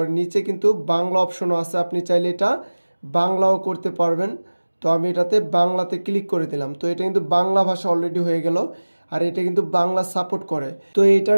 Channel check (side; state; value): both; inverted; correlation -1.00